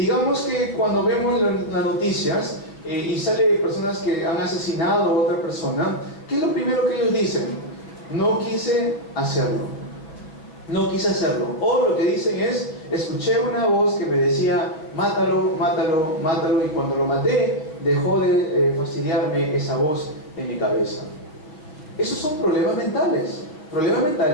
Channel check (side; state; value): right; late; 6.4 ms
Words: que cuando vemos las noticias y sale personas que han asesinado a otra persona, ¿qué es lo primero que ellos dicen? No quise hacerlo. No quise hacerlo. O lo que dicen es, escuché una voz que me decía, mátalo, mátalo, mátalo, y cuando lo maté, dejó de fastidiarme esa voz en mi cabeza. Esos son problemas mentales